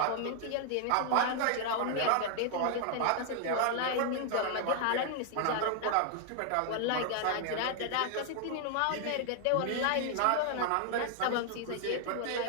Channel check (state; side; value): different; both; correlation 0.00